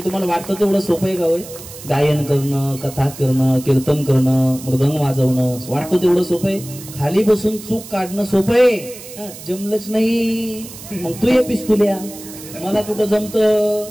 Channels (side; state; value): right; noise; hiss, 15 dB below the sound